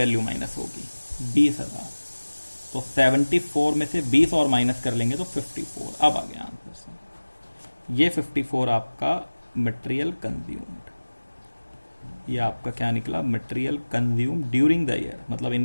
minus होगी 20,000। तो 74 में से 20 और माइनस कर लेंगे तो 54। अब आ गया आंसर से। ये 54 आपका मटेरियल कंज्यूम्ड, ये आपका क्या निकला, material consume during the year, मतलब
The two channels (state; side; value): inverted; both; correlation -1.00